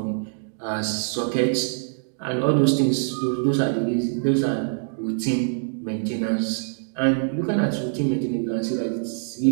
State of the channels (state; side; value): silent; left; digital silence